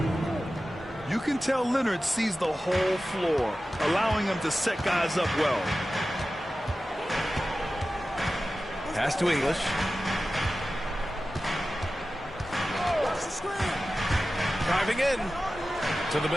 You can tell Leonard sees the whole floor, allowing him to set guys up well. Pass to English. Driving in to the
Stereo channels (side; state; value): both; normal; correlation 0.95